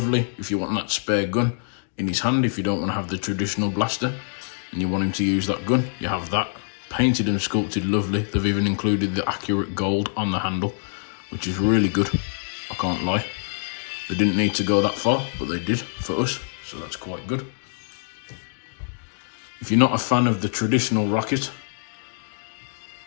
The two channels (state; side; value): silent; right; digital silence